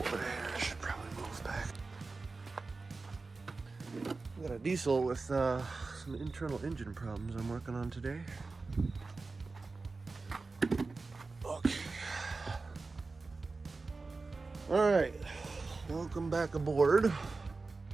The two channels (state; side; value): quieter; left; 3.8 dB